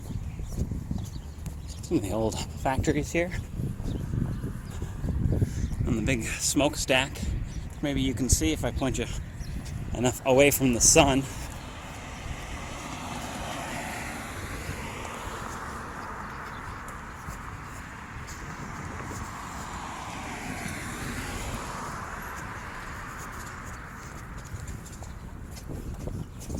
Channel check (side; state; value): both; identical; correlation 1.00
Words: Some of the old factories here. And the big smokestack. Maybe you can see if I point you enough away from the sun.